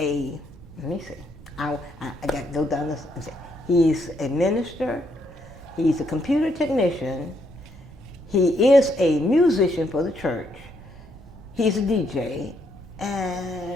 me see. I got to go down this and say. He's a minister. He's a computer technician. He is a musician for the church. He's a DJ. And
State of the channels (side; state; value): both; normal; correlation 0.74